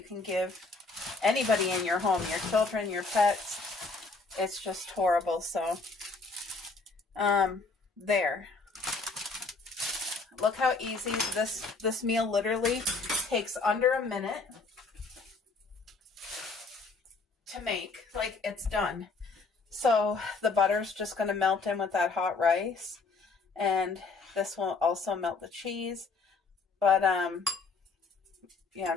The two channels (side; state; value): right; quieter; 4.0 dB